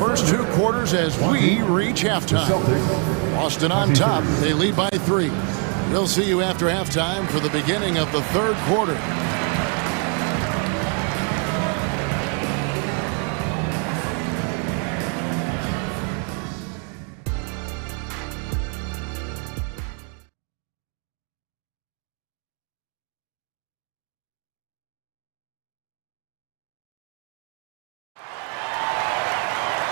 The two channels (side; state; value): left; quieter; 40.0 dB